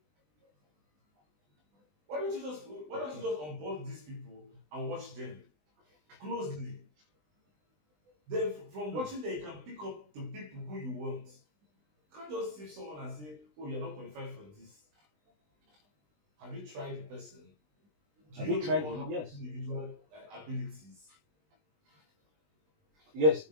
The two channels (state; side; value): late; left; 20 ms